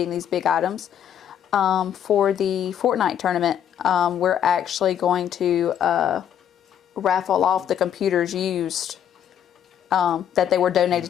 these big items. For the Fortnite tournament, we're actually going to raffle off the computers used that they were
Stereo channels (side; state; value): right; quieter; 9.4 dB